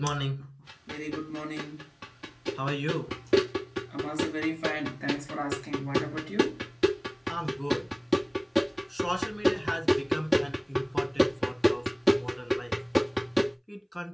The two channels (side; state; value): both; identical; correlation 1.00